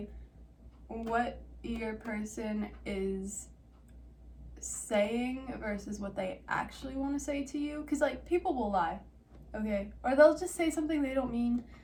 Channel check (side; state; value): both; identical; correlation 1.00